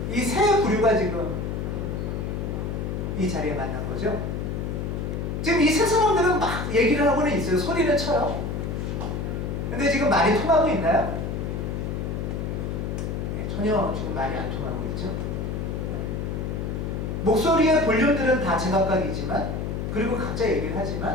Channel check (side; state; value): left; noise; hum, 3 dB below the sound